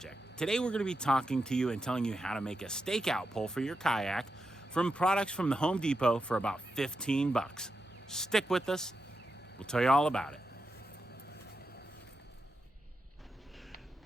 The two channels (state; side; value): normal; both; correlation 0.87